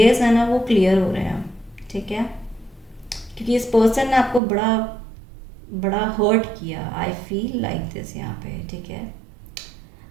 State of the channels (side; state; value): left; drops out; at 4.4 s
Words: है ना वो क्लियर हो रहे हैं, ठीक है, क्योंकि इस पर्सन ने आपको बड़ा बड़ा हर्ट किया, आई फील लाइक दिस यहाँ पे, ठीक है।